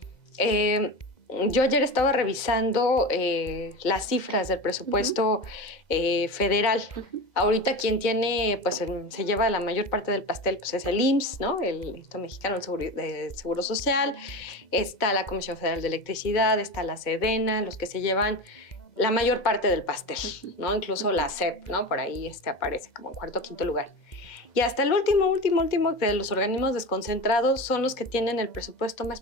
yo ayer estaba revisando las cifras del presupuesto federal. Ahorita quien tiene, pues se lleva la mayor parte del pastel, pues es el IMSS, ¿no? El Instituto Mexicano del Seguro Social. Está la Comisión Federal de Electricidad, está la SEDENA, los que se llevan la mayor parte del pastel, ¿no? Incluso la SEP, ¿no? Por ahí aparece como en 4º o 5º lugar. Y hasta el último de los organismos desconcentrados son los que tienen el presupuesto más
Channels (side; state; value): right; late; 2.0 ms